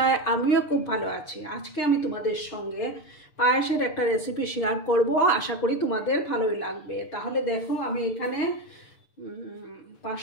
আমিও খুব ভালো আছি। আজকে আমি তোমাদের সঙ্গে পায়েসের একটা রেসিপি শেয়ার করব, আশা করি তোমাদের ভালোই লাগবে। তাহলে দেখো, আমি এখানে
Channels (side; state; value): right; late; 6.6 ms